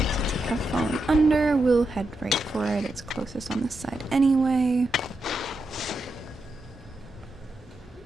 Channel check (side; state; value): both; normal; correlation 0.86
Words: we have fallen under, we'll head right for it. It's closest on this side anyway.